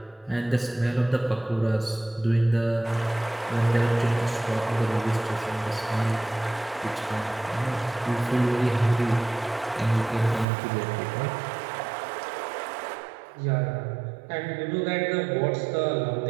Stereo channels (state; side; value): drops out; left; at 10.5 s